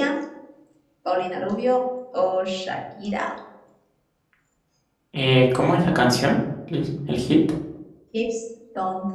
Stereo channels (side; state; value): both; identical; correlation 1.00